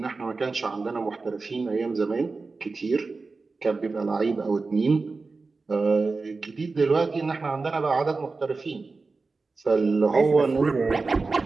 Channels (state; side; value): quieter; left; 4.0 dB